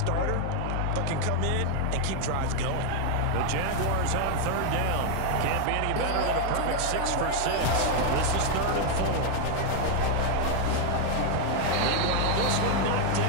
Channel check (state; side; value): different; both; correlation 0.00